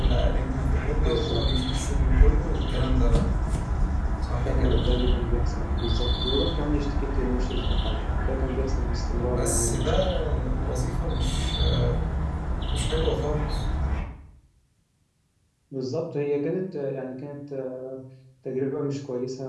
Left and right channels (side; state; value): both; identical; correlation 1.00